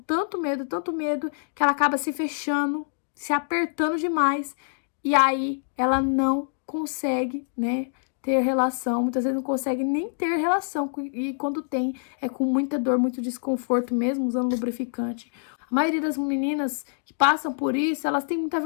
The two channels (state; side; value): silent; right; digital silence